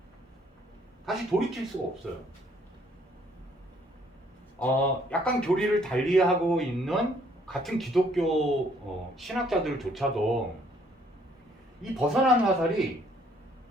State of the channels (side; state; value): both; normal; correlation 0.64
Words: 약간 교리를 달리하고 있는 같은 기독교 신학자들조차도 이 벗어난 화살이